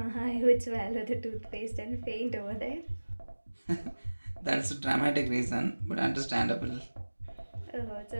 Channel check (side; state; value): both; inverted; correlation -1.00